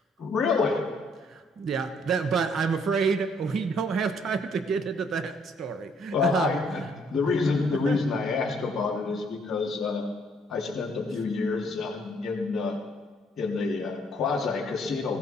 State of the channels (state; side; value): normal; both; correlation 0.66